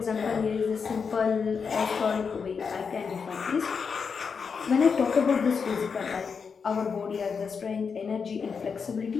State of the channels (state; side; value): quieter; right; 5.8 dB